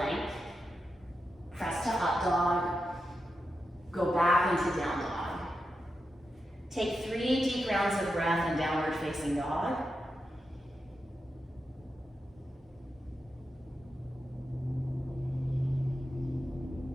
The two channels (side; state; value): both; normal; correlation 0.88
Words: Press to up dog. Go back into down dog. Take 3 deep rounds of breath in downward facing dog.